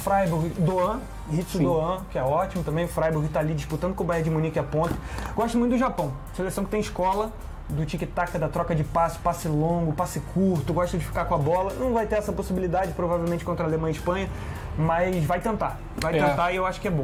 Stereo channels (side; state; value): both; identical; correlation 1.00